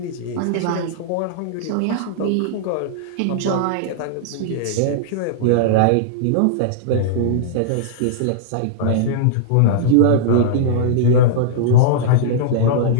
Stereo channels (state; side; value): different; both; correlation -0.02